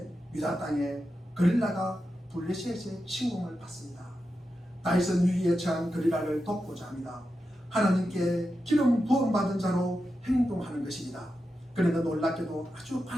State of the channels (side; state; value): both; normal; correlation 0.89